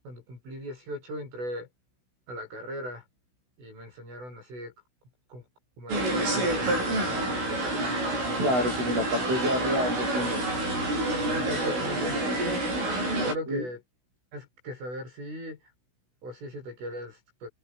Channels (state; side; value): late; left; 16 ms